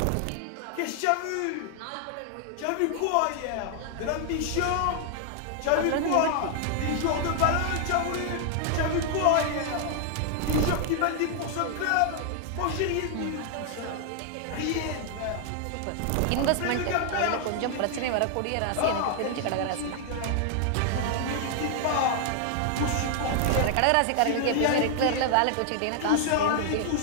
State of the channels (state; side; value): different; both; correlation 0.00